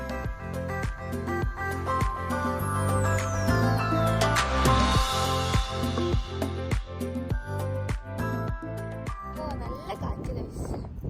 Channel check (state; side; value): identical; both; correlation 1.00